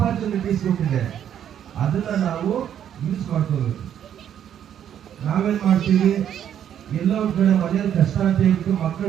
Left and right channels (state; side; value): quieter; left; 9.7 dB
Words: ಕೊಟ್ಟಿದೆ. ಅದನ್ನ ನಾವು ಯೂಸ್ ಮಾಡ್ಕೋಬೇಕು. ನಾವೇನ್ ಮಾಡ್ತೀವಿ, ಎಲ್ಲ ಒಂದ್ ಕಡೆ ಮನೆಯಲ್ಲಿ ಕಷ್ಟ ಅಂತ ಹೇಳ್ಬಿಟ್ಟು